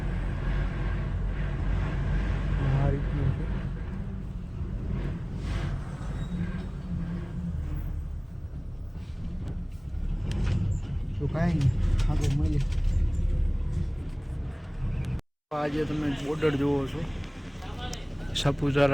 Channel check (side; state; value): both; identical; correlation 1.00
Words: આ રીતનું છે. તો કાંઈ નહીં, આગળ મળીએ. આજે તમે બોર્ડર જુઓ છો,